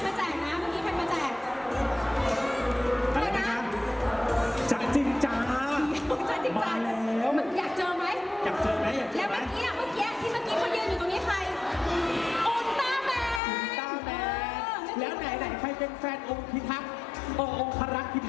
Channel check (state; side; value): drops out; right; at 13.4 s